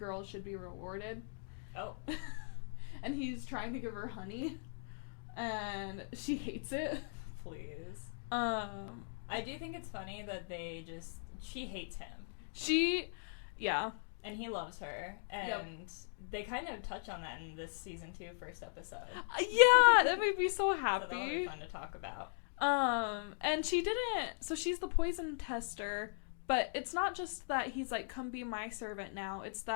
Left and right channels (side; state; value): right; silent; digital silence